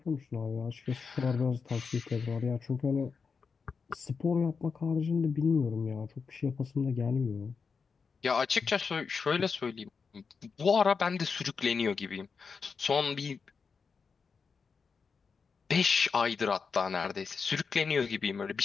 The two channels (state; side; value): quieter; right; 5.4 dB